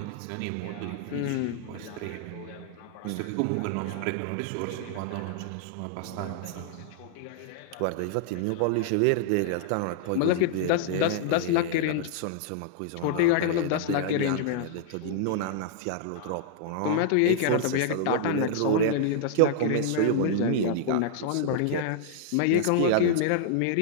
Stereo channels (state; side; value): different; both; correlation -0.01